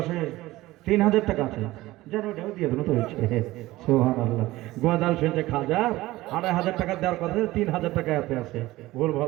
আছে, ৩০০০ টাকা আছে। যেন ওটাও দিয়ে দেবো তো হয়েছে। সুবহানাল্লাহ। গোয়াদাল শুনছে খাজা ২৫০০ টাকা দেওয়ার কথা, ৩০০০ টাকা এতে আছে। ভুল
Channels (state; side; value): quieter; left; 17.8 dB